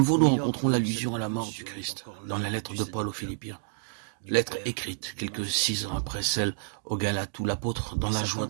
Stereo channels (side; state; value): left; silent; digital silence